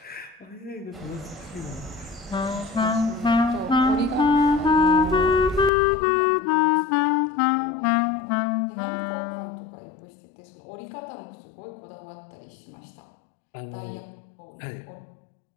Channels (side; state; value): right; drops out; at 5.7 s